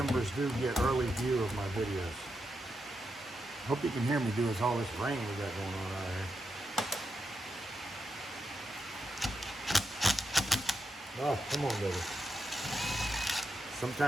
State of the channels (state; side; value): normal; both; correlation 0.84